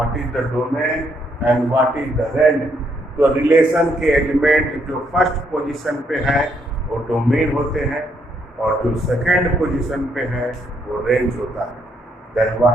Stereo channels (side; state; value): both; normal; correlation 0.73